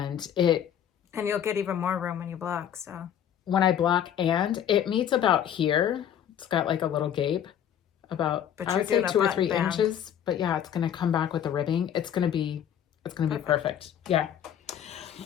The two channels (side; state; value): right; quieter; 9.6 dB